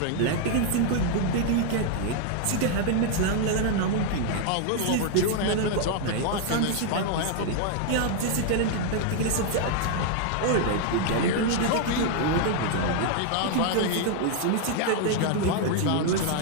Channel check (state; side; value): different; both; correlation 0.00